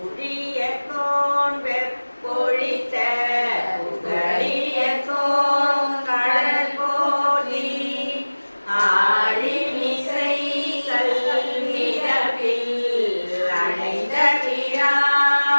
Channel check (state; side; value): inverted; both; correlation -1.00